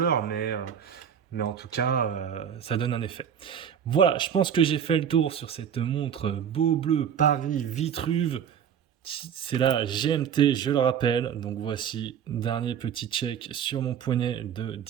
mais en tout cas, ça donne un effet. Voilà, je pense que j'ai fait le tour sur cette montre Beaubleu Paris Vitruve. C'est la GMT, je le rappelle. Donc voici, dernier petit check sur mon poignet de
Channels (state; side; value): quieter; left; 8.4 dB